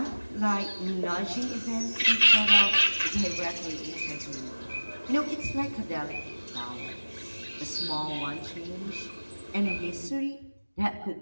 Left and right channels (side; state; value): both; inverted; correlation -1.00